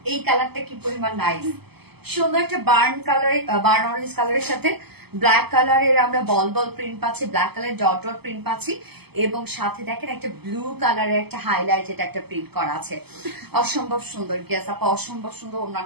এই কালারটা কি পরিমাণ নাইস। সুন্দর একটা বার্ন অরেঞ্জ কালারের সাথে ব্ল্যাক কালারের আমরা বল বল প্রিন্ট পাচ্ছি, ব্ল্যাক কালারের ডট ডট প্রিন্ট পাচ্ছি, এবং সাথে দেখেন একটা ব্লু কালারের একটা হাইলাইটেড একটা প্রিন্ট করা আছে। অসম্ভব সুন্দর। গেস আপা অসম্ভব সুন্দর।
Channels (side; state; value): left; late; 0.97 ms